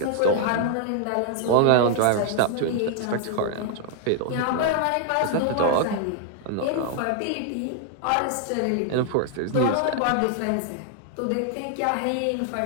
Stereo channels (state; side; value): different; both; correlation 0.00